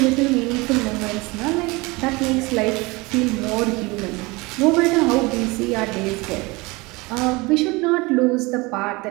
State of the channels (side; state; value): left; quieter; 24.2 dB